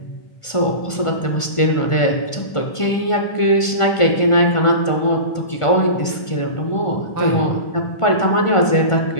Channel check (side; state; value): right; late; 1.5 ms